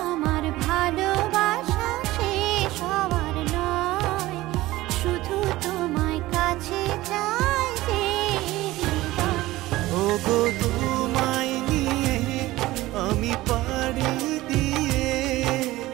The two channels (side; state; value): left; quieter; 17.6 dB